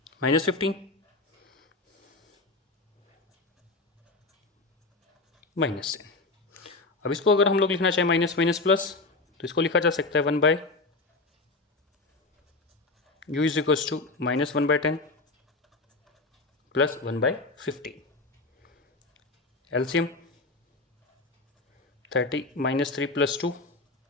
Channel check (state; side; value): quieter; right; 3.4 dB